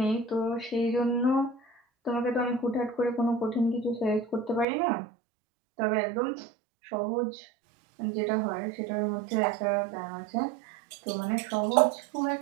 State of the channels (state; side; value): drops out; left; at 4.7 s